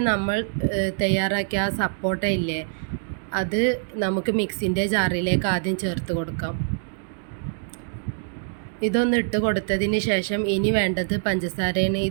നമ്മൾ തയ്യാറാക്കിയ ആ സപ്പോട്ട ഇല്ലേ, അത് നമുക്ക് മിക്സിൻ്റെ ജാറിലേക്ക് ആദ്യം ചേർത്ത് കൊടുക്കാം. ഇതൊന്ന് ഇട്ട് കൊടുത്തതിന് ശേഷം ഇനി വേണ്ടത് പഞ്ചസാരയാണ്.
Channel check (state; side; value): silent; left; digital silence